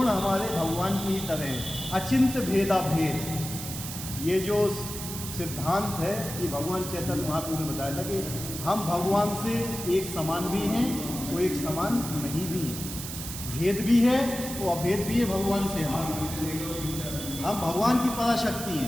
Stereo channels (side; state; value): right; noise; hiss, 8 dB below the sound